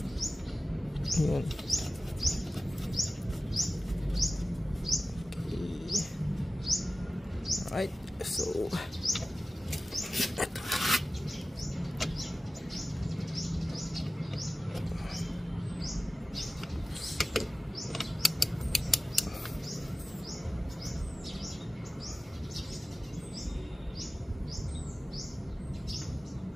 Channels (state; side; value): normal; both; correlation 0.95